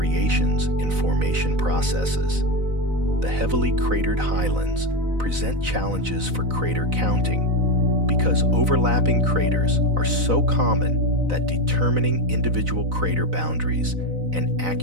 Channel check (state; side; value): late; left; 4.0 ms